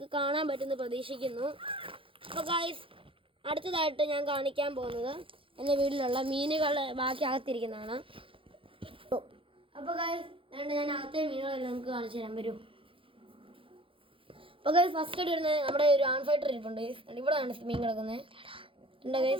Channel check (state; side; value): late; left; 0.26 ms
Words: കാണാൻ പറ്റുമെന്ന് പ്രതീക്ഷിക്കുന്നു. അപ്പോൾ ഗൈസ് അടുത്തതായിട്ട് ഞാൻ കാണിക്കാൻ പോകുന്നത് എൻ്റെ വീട്ടിലുള്ള മീനുകളെ ബാക്കി അകത്തിരിക്കുന്നതാണ്. അപ്പോൾ ഗൈസ് ഞാൻ അകത്തെ മീനുകളെല്ലാം നിങ്ങൾക്ക് കാണിച്ചു തരാൻ വരും. അപ്പോൾ ഗൈസ് ഫസ്റ്റ് ആയിട്ട് വരുന്നത് നമ്മുടെ ഒരു ആൺ ഫൈറ്റർ ഇരിപ്പുണ്ട്. ഇവിടെയാണ് മീൻ കിടക്കുന്നത് ഉണ്ട്